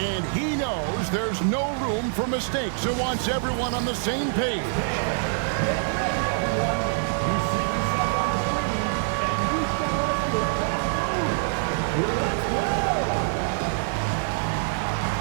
he knows there's no room for mistakes and wants everyone on the same page.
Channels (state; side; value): silent; left; digital silence